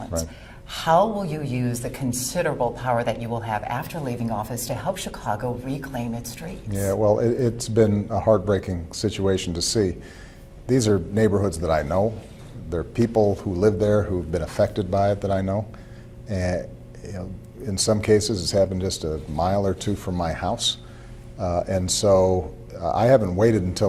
Right. How will you use the considerable power that you will have after leaving office to help Chicago reclaim its streets? Yeah, well, it's been a heartbreaking situation to see. These are neighborhoods that I know. There are people who live there who've been affected by it that I know. And in some cases, it's happened just a mile or two from my house. And so I haven't waited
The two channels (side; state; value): both; identical; correlation 1.00